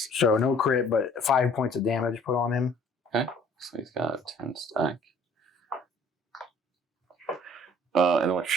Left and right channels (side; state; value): both; normal; correlation 0.54